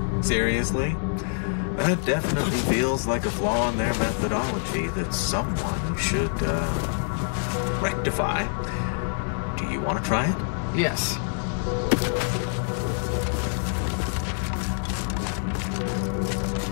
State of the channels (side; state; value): right; silent; 61 dB below the other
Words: Seriously? That definitely feels like a flaw in their methodology that someone should, rectify. Do you want to try it? Yes.